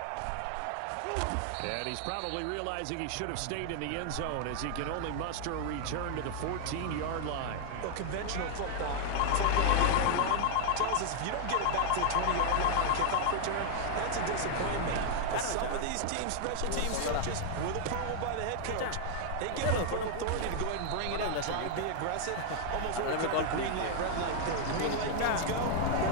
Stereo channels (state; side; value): different; both; correlation 0.00